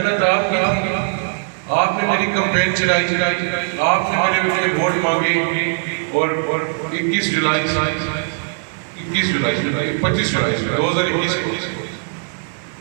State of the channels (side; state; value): left; silent; 66 dB below the other